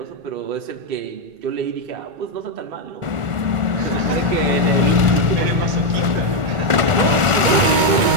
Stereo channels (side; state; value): left; late; 1.4 ms